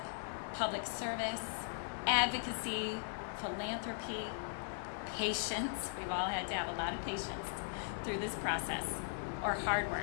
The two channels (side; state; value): right; silent; digital silence